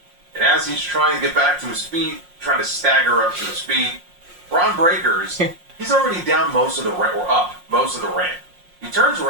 And as he's trying to get back to his feet, trying to stagger up to his feet, Braun Breaker's, he's already down most of the ramp, or up most of the ramp. He turns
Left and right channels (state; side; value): late; left; 5.6 ms